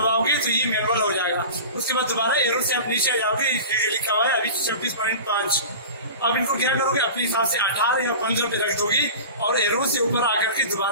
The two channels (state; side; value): inverted; both; correlation -0.35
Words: तो ये मैनुअल हो जाएगा। उसके बाद दोबारा एरो से आप नीचे आ जाओगे, लिखा हुआ है अभी 26.5। अब इनको क्या करोगे, अपने हिसाब से 18 या 15 पे रख दोगे और एरो से ऊपर आकर के